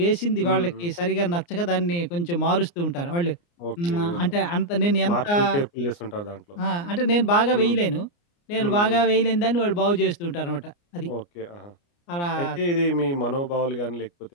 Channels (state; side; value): late; right; 29 ms